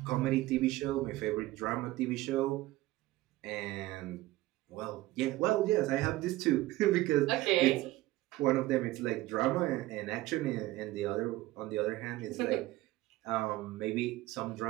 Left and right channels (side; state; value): left; quieter; 17.6 dB